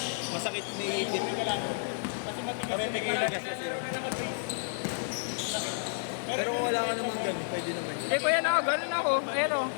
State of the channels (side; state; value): right; silent; digital silence